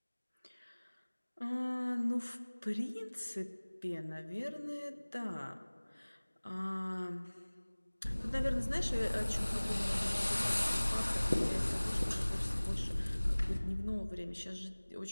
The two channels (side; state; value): both; inverted; correlation -1.00